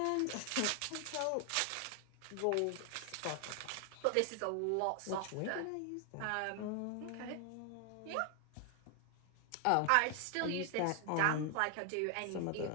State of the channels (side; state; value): both; different; correlation 0.00